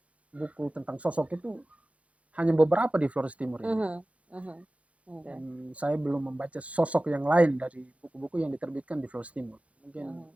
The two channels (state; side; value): late; left; 0.064 ms